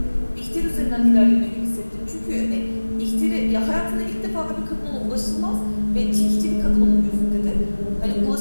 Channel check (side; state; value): both; inverted; correlation -1.00